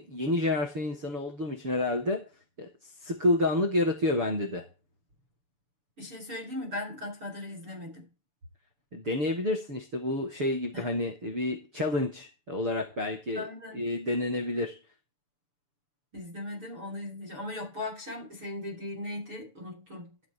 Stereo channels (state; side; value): late; left; 6.9 ms